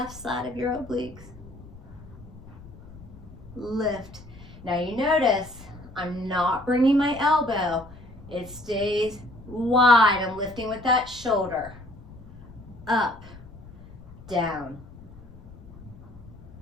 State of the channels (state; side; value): noise; left; rumble, 18 dB below the sound